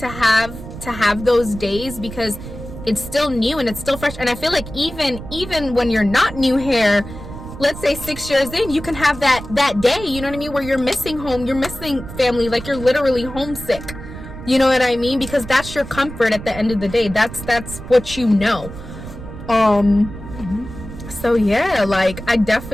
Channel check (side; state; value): right; noise; rumble, 12 dB below the sound